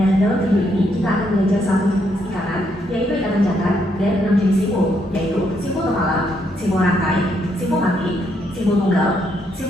dalam video ini kita akan belajar satu jenis ikatan, yaitu ikatan jangkar, dan 6 jenis simbol, yaitu simbol kepala, simbol rantai, simbol mati, simbol tunggal,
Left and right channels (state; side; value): normal; both; correlation 0.75